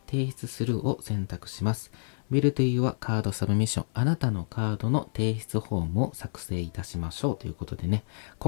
提出するを選択します。Build your card submission、あなたのカードの提出フォームを作成いたしましょうということでね、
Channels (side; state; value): right; silent; 57 dB below the other